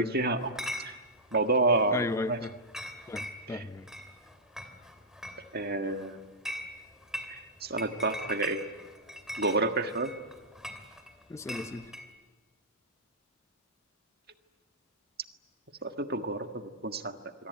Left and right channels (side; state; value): both; normal; correlation -0.10